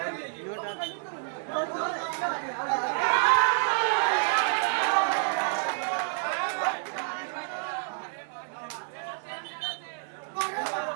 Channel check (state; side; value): silent; left; digital silence